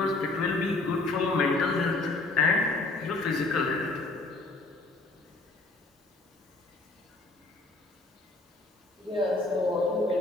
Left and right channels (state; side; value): quieter; right; 3.1 dB